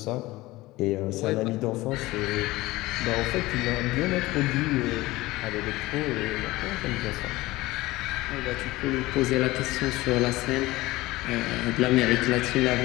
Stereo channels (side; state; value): right; quieter; 19.2 dB